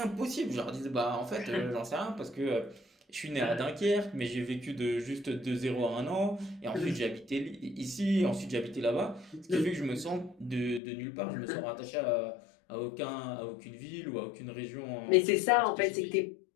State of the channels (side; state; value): right; drops out; at 10.8 s